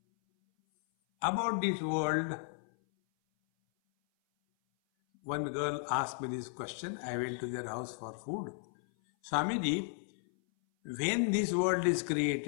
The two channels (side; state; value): right; silent; 55 dB below the other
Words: About this world, one girl asked me this question. I went to their house for food. Swamiji, when this world is